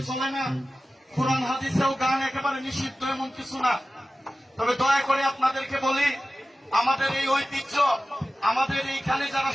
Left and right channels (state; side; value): normal; both; correlation 0.95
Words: চলে না। কোরআন হাদিসেও গান একেবারে নিষিদ্ধ, এমন কিছু না। তবে দয়া করে আপনাদেরকে বলি, আমাদের এই ঐতিহ্য, আমাদের এইখানে যারা